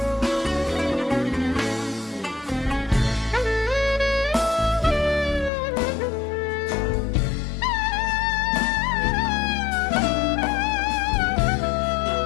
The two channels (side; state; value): right; drops out; at 5.5 s